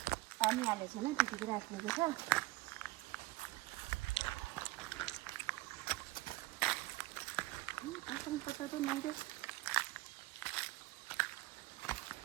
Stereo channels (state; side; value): quieter; left; 20.0 dB